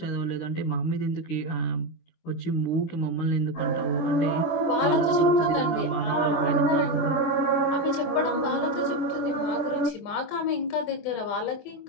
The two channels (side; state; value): right; late; 24 ms